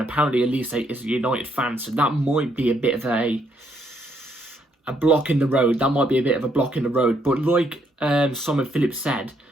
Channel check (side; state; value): both; normal; correlation 0.73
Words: apparently Olise is a United fan, so that might be a bit of a block in the road. That might be a bit of a block in the road. But like Simon Phillips said,